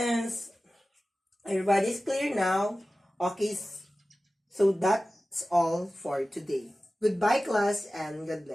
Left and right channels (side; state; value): both; normal; correlation 0.96